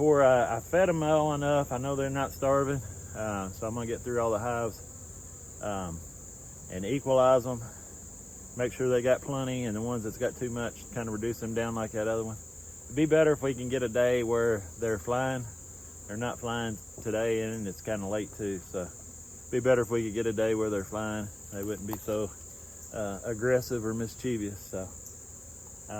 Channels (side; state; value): left; noise; hiss, 27 dB below the sound